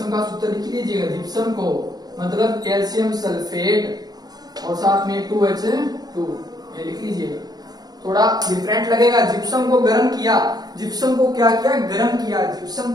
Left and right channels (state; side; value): late; left; 0.19 ms